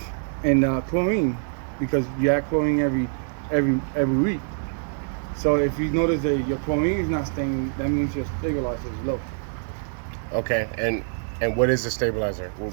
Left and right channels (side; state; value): left; silent; digital silence